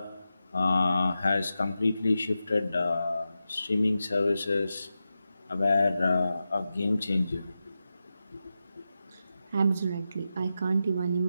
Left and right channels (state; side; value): inverted; both; correlation -0.91